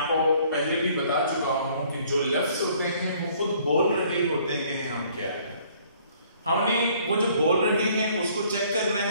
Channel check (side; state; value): both; inverted; correlation -0.60